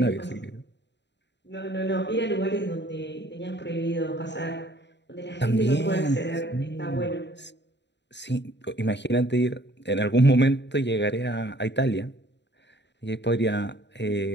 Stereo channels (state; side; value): late; right; 0.51 ms